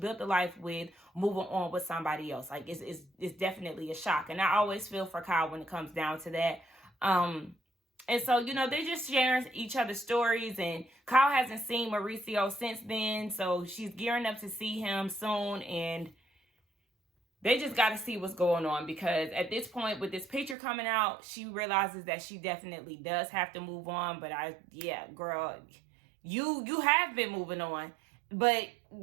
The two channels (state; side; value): drops out; left; at 20.6 s